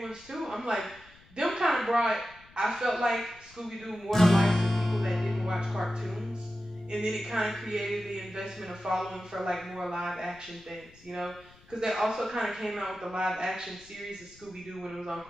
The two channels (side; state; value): left; noise; rumble, 25 dB below the sound